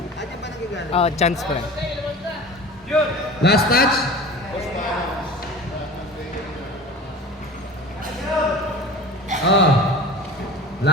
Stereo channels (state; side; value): normal; both; correlation 0.37